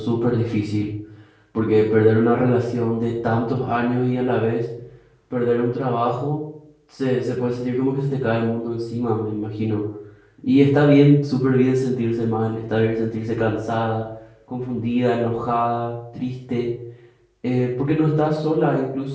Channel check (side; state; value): both; identical; correlation 1.00